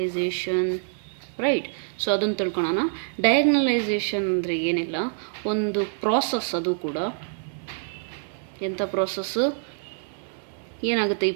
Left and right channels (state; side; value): silent; left; 60 dB below the other